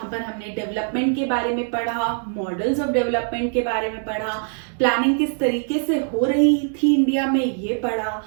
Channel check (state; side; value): silent; left; 64 dB below the other